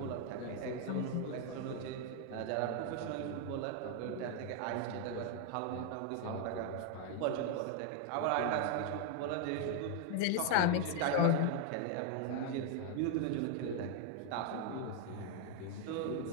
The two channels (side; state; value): both; different; correlation 0.00